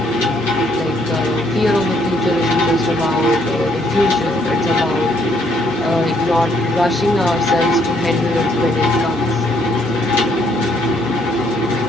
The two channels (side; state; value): both; normal; correlation 0.69